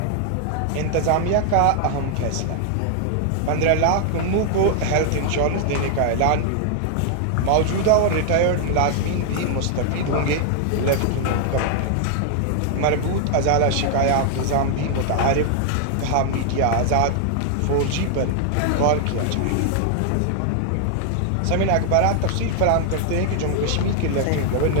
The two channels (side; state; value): both; different; correlation 0.00